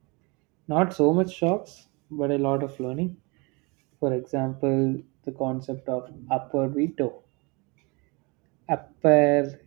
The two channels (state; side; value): quieter; left; 28.4 dB